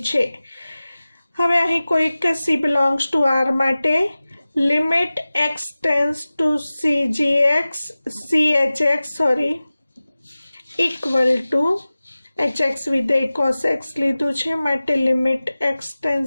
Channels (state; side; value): inverted; both; correlation -0.97